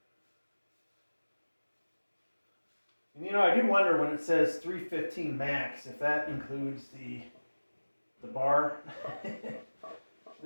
And I do wonder when it says 315 max if that includes the bar.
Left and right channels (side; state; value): both; inverted; correlation -1.00